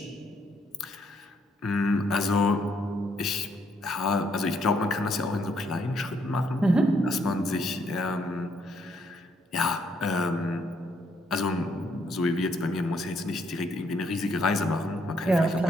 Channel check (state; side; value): normal; both; correlation 0.71